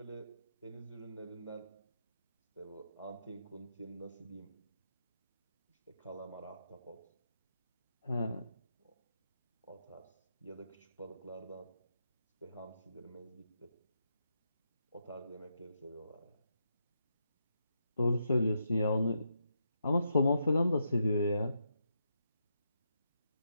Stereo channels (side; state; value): both; inverted; correlation -0.82